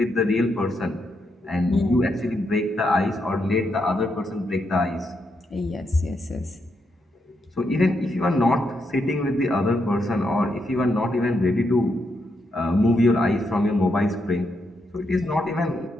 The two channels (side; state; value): both; normal; correlation 0.81